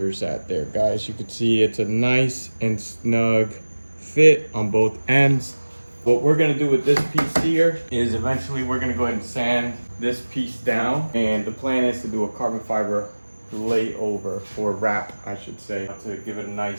at there, guys? You can see it's a nice and snug fit on both ends. What we're gonna do with this piece here is eventually we're gonna go ahead and sand this piece down, and the plan is to do a carbon fiber layover, or wrap I should say, to give it a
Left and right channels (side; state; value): both; inverted; correlation -1.00